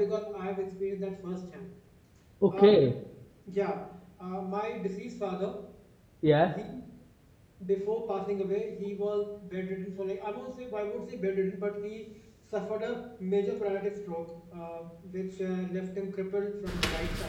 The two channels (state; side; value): identical; both; correlation 1.00